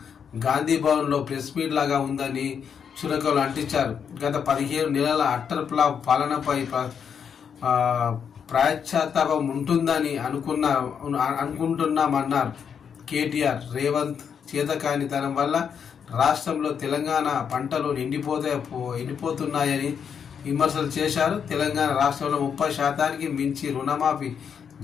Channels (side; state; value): right; quieter; 7.3 dB